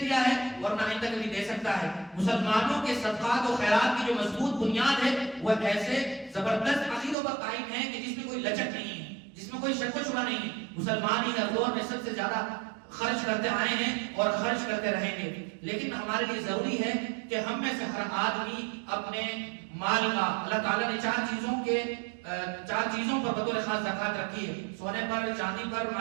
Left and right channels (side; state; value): left; drops out; at 7.2 s